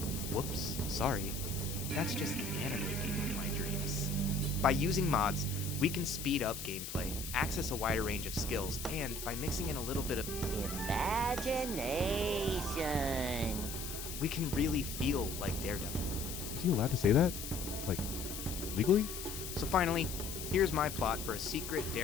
whoops, sorry. That's just the anime game of my dreams. By using mods, we can speed up gameplay, access a wider range of skills, and by mixing in a little bit of imagination, we can really feel like Daredevil. Is he allowed to say that? Like, legally? So finally, here's my plot for a secret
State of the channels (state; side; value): noise; left; hiss, 7 dB below the sound